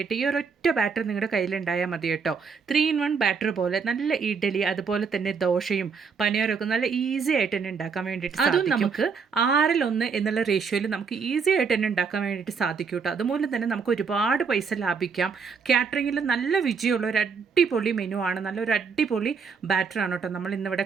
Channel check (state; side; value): quieter; left; 5.6 dB